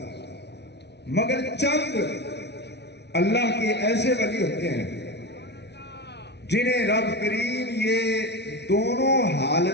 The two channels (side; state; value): right; late; 0.50 ms